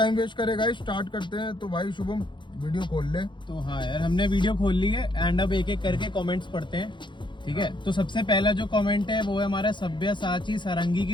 वेस्ट करे गाइस स्टार्ट करते हैं। तो भाई शुभम वीडियो खोल ले। तो हाँ यार, हमने वीडियो खोल ली है एंड अब एक एक करके कमेंट्स पढ़ते हैं। ठीक है, तो सबसे पहला जो कमेंट है वो है हमारा सब्यसाची सारंगी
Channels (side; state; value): right; late; 0.23 ms